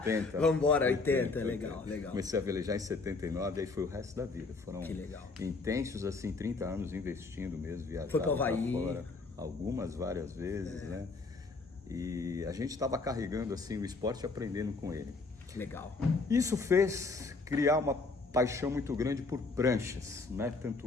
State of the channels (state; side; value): quieter; right; 3.9 dB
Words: Vamos embora, 80, legal. Comecei a velejar em 79, aí foi o resto da vida. Foram intensos, assim, 30 anos investindo mesmo, viajando foi para o Havaí. Fora, várias vezes, né? E a gente estava carregando, assim, o esporte e aprendendo com ele. Que legal. Isso fez criar uma paixão muito grande por pranchas, né?